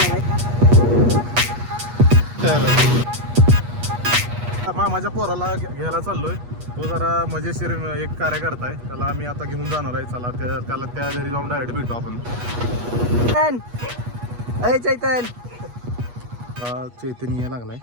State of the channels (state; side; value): late; left; 8.3 ms